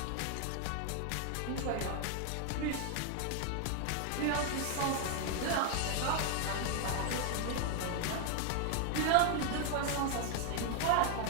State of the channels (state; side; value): different; both; correlation 0.01